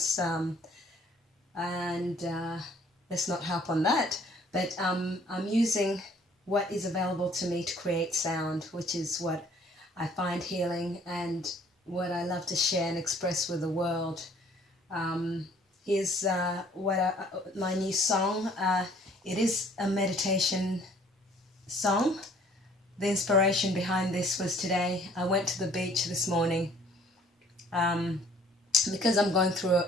And let's not harp on that, but I'm using what is available to me to create sound, which is what I find healing and what I love to share and express with the world. Here's my new song. It is a meditation song. The inspiration behind this was today. I went to the beach this morning because I'm going through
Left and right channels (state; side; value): normal; both; correlation 0.57